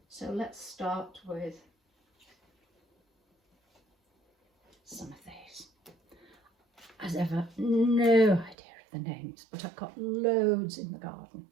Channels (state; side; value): drops out; left; at 8.6 s